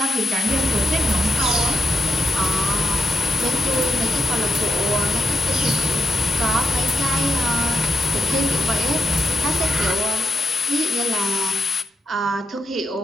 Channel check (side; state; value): both; normal; correlation 0.80